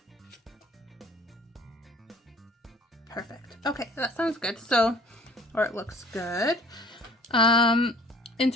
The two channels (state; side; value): normal; both; correlation 0.51